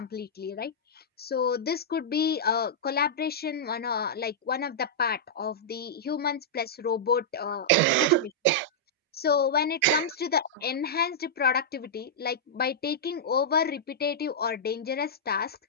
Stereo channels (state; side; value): normal; both; correlation -0.10